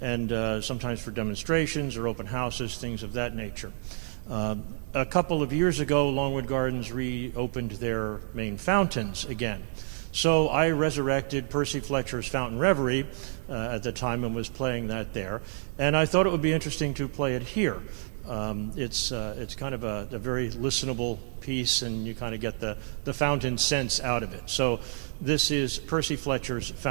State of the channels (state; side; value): silent; left; digital silence